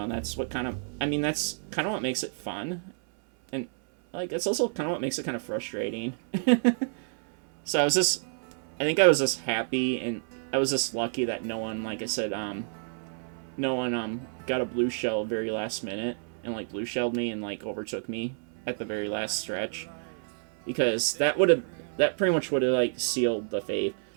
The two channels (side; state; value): left; silent; 59 dB below the other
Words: and that's what that's kind of what makes it fun, and, like, it's also kind of what makes it kind of frustrating. So I think I was just happy, and I was just lucky that no one, like I said, no one got a blue shell very last minute and, like, blue shelled me and, like, overtook me at the very last stretch, because that pretty much would have, like, sealed the fate.